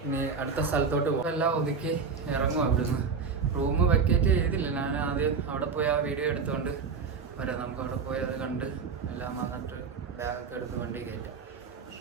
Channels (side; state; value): left; quieter; 5.4 dB